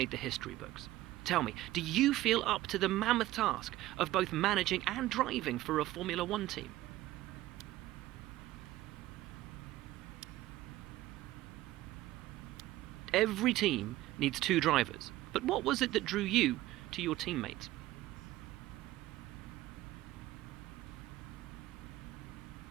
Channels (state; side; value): quieter; left; 16.0 dB